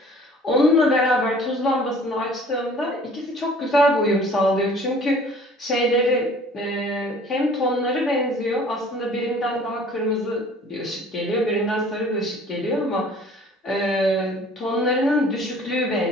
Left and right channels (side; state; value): both; normal; correlation 0.51